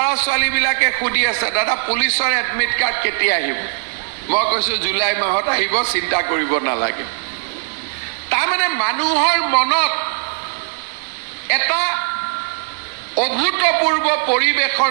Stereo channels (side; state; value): left; silent; digital silence